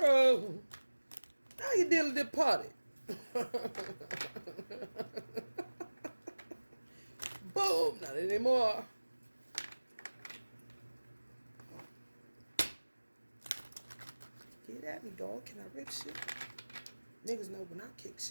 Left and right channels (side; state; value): both; inverted; correlation -1.00